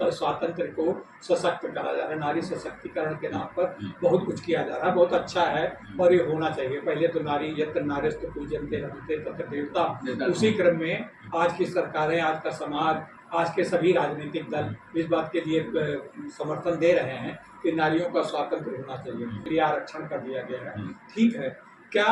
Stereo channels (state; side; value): identical; both; correlation 1.00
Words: को सशक्त करा जा रहा है, नारी सशक्तिकरण के नाम पर बहुत कुछ किया जा रहा है, बहुत अच्छा है और ये होना चाहिए। पहले तो नारी यत्र नारीस्तु पूज्यन्ते रमन्ते तत्र देवता, उसी क्रम में आज की सरकारें, आज का समाज, आज के सभी राजनीतिक दल इस बात के लिए समर्थन दे रहे हैं कि नारियों का स्वातंत्र होना चाहिए, प्रिय आरक्षण कर दिया गया है। ठीक है,